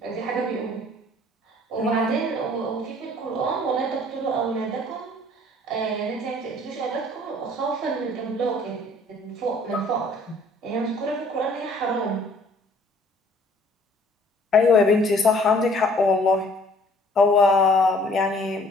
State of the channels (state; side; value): normal; both; correlation 0.56